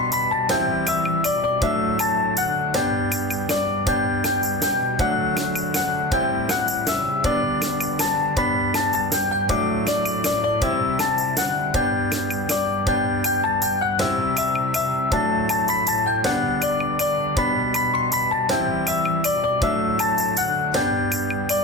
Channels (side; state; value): both; normal; correlation 0.35